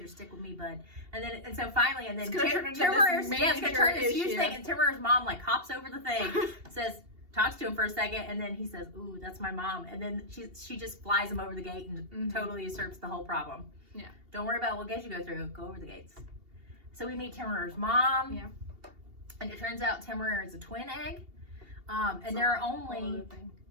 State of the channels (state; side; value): late; left; 2.8 ms